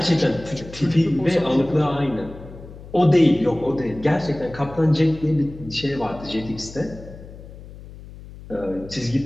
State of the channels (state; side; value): noise; left; hum, 16 dB below the sound